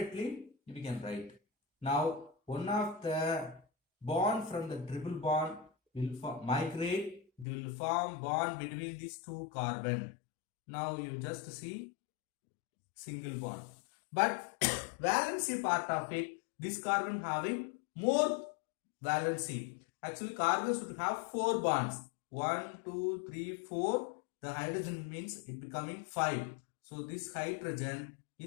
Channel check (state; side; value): drops out; right; at 7.5 s